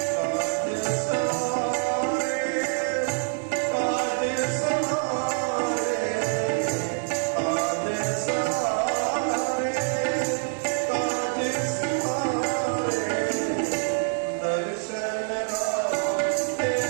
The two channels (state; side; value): silent; left; 61 dB below the other